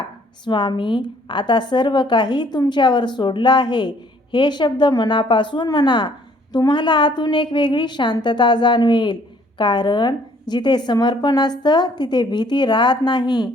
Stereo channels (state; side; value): normal; both; correlation 0.61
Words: स्वामी आता सर्व काही तुमच्यावर सोडलं आहे. हे शब्द मनापासून म्हणा. तुम्हाला आतून एक वेगळी शांतता जाणवेल, कारण जिथे समर्पण असतं तिथे भीती राहत